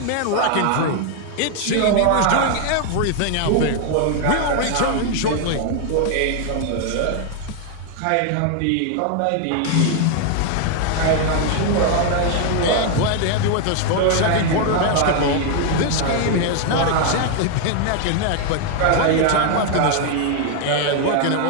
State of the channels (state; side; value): different; both; correlation 0.00